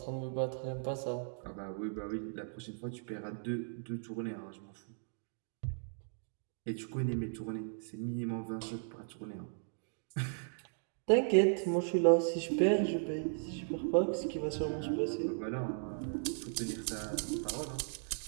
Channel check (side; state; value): left; silent; digital silence